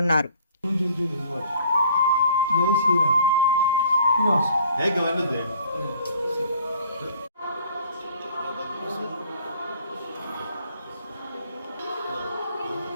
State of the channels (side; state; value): both; inverted; correlation -0.56